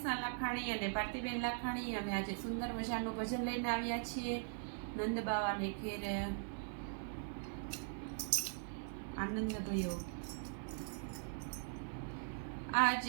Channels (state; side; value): silent; left; 50 dB below the other